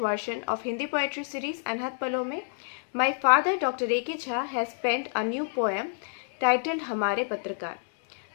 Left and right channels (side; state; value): right; silent; digital silence